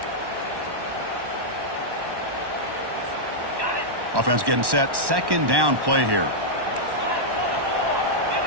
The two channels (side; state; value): left; late; 1.1 ms